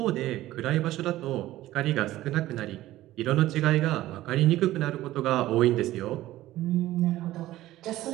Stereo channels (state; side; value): quieter; left; 15.4 dB